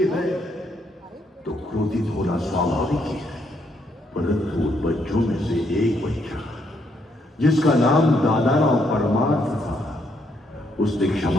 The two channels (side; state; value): both; normal; correlation 0.74